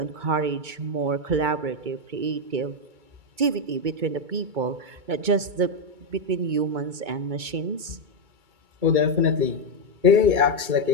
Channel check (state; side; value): late; left; 2.2 ms